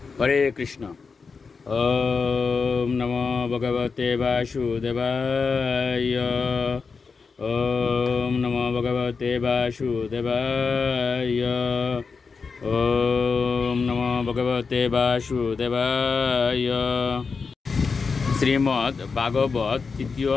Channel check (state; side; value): quieter; right; 5.0 dB